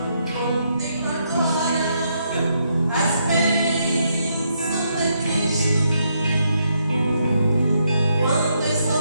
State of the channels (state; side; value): inverted; both; correlation -0.77